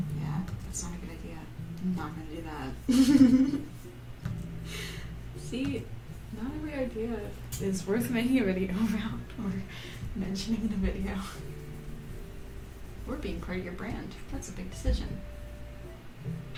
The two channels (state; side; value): identical; both; correlation 1.00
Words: Yeah, that's not a good idea. I'm not gonna do that. See, not every idea is worth making a video about or mentioning in a video. Or being part of your brand. That's a big decision.